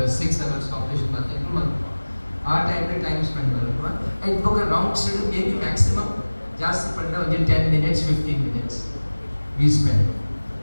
6 hours operation ಮಾಡ್ತಾ ಎಂಕುಳು ಮಾಡ್ಕೊ ಆ ಟೈಮ್ ಸ್ಪೆಂಡ್ ಮಾಡ್ಕೊ ಆಯ್ತು ಹೋಗ ರೌಂಡ್ಸ್ ಮೇಬಿ ಮ್ಯಾಕ್ಸಿಮಮ್ ಜಾಸ್ತಿ ಪಂಡ ಒಂದು 10 minutes 15 minutes we spend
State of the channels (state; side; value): inverted; both; correlation -1.00